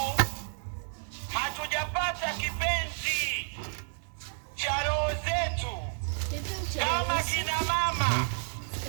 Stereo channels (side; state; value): left; silent; 57 dB below the other